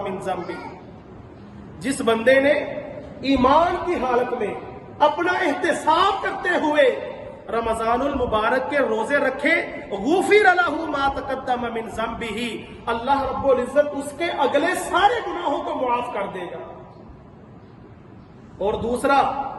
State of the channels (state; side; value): identical; both; correlation 1.00